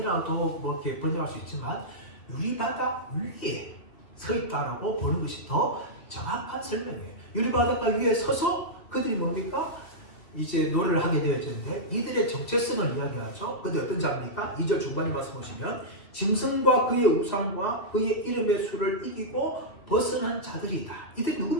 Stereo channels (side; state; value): right; late; 2.8 ms